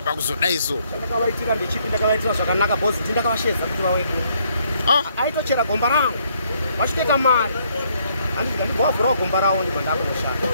pakuzodaiso chandakavaitira ndechipi ndakavaitira zvakanaka bhosi ndi ndakavashedza kuti vawedu aitochera gomba rangu vachitoita mari handiti ndibovhurawo gomba ravo ndibva ndakunoshanda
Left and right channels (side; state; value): both; inverted; correlation -0.69